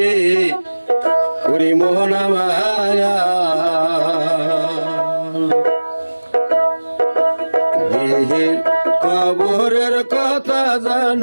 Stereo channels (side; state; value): both; inverted; correlation -1.00